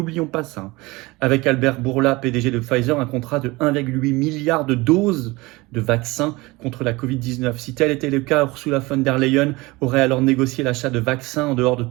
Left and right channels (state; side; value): quieter; left; 22.4 dB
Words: pas ça, avec Albert Bourla, PDG de Pfizer, un contrat de 1,8 milliard de doses de vaccins contre la Covid-19. Si tel était le cas, Ursula von der Leyen aurait alors négocié l'achat de vaccins en dehors de